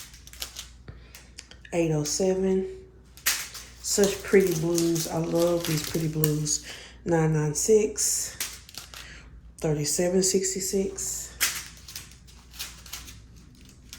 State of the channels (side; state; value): both; identical; correlation 1.00